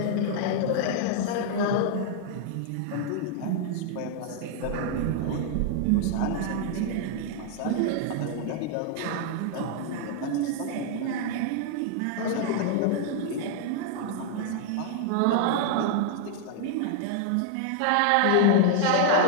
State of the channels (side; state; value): both; different; correlation 0.00